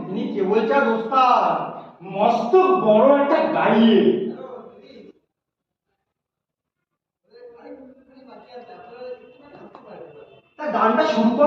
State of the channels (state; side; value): identical; both; correlation 1.00